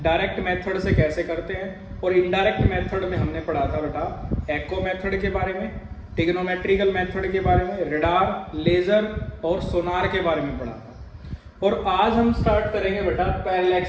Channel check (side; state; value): both; identical; correlation 1.00